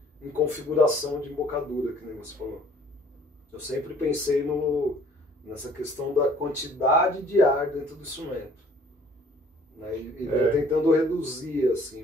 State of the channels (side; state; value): both; normal; correlation 0.56